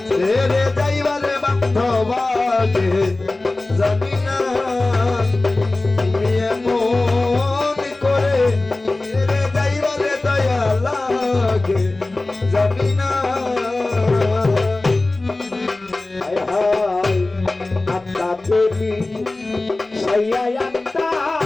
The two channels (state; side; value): quieter; right; 3.0 dB